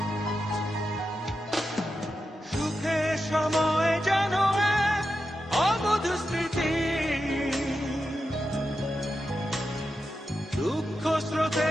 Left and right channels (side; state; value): both; normal; correlation 0.89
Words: সময় যেন এক অবধ স্মৃতি, দুঃখ স্রোতে